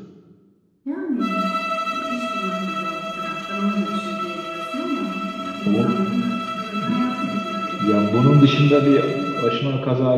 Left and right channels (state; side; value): identical; both; correlation 1.00